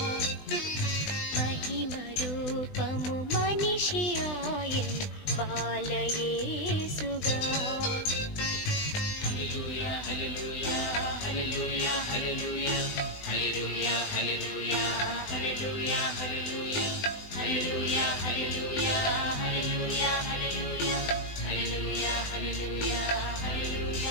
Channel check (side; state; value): right; late; 20 ms